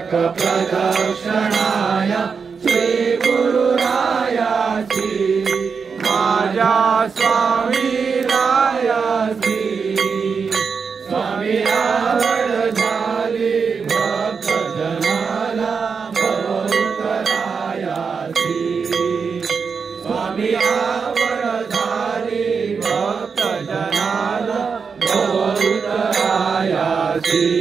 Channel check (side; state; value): left; quieter; 5.6 dB